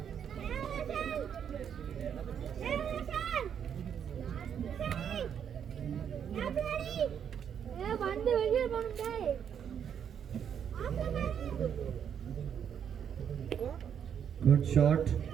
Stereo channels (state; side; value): quieter; left; 8.3 dB